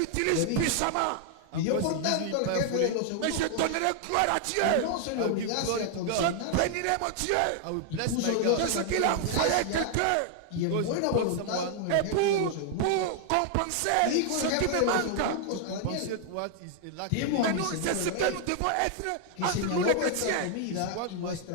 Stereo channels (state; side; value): different; both; correlation 0.00